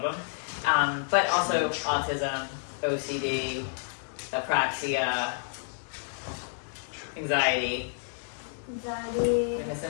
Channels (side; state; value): right; silent; digital silence